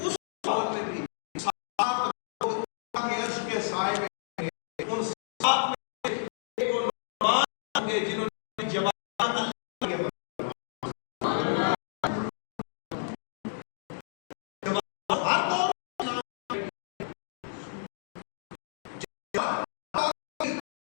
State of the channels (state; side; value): silent; right; digital silence